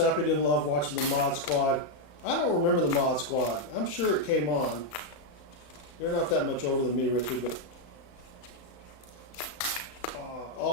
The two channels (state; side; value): late; right; 35 ms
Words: didn't love watching the Mod Squad. I don't remember the Mod Squad. I'm sure it came on. You're not that much older than me, Richard, but